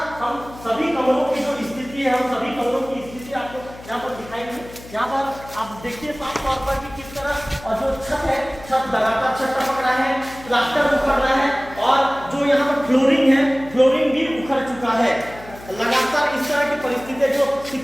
हम सभी कमरों की जो स्थिति है, हम सभी कमरों की स्थिति आपको यहाँ पर दिखाएंगे। यहाँ पर आप देखिए साफ तौर पर कि किस तरह और जो छत है, छत लगातार छत टपक रहा है, प्लास्टर उखड़ रहा है और जो यहाँ पर फ्लोरिंग है, फ्लोरिंग भी उखड़ चुका है। लगातार इस तरह की परिस्थितियां, जो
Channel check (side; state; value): left; noise; hum, 18 dB below the sound